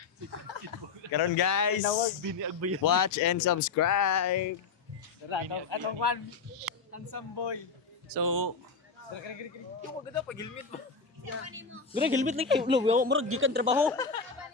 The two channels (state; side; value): quieter; right; 5.0 dB